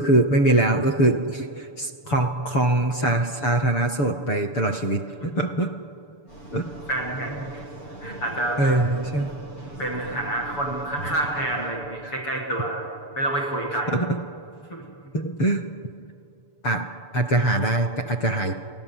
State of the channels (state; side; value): late; right; 6.9 ms